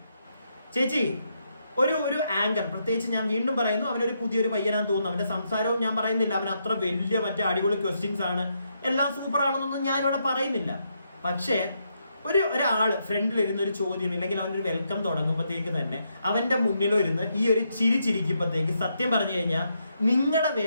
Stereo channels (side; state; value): both; inverted; correlation -0.79